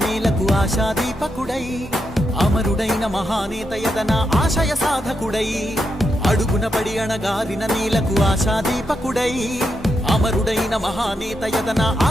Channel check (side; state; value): both; normal; correlation 0.83